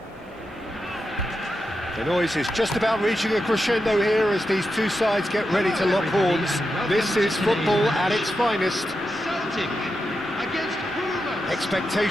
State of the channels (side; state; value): both; normal; correlation 0.88